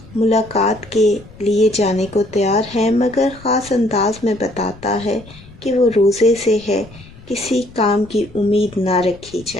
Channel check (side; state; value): left; noise; rumble, 21 dB below the sound